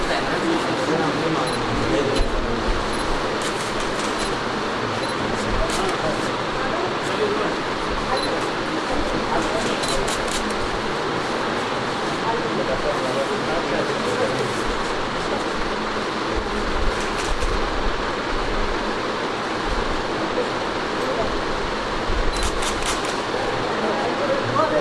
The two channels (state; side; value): identical; both; correlation 1.00